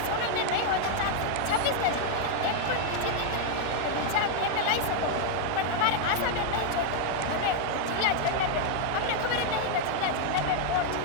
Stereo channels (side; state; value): both; different; correlation 0.00